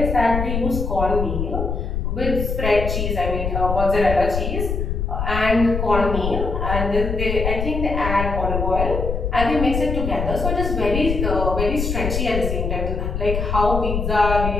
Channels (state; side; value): noise; left; rumble, 2 dB below the sound